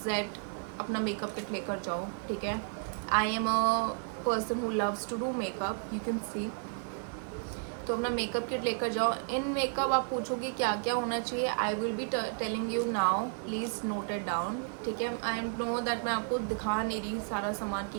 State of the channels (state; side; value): silent; left; 56 dB below the other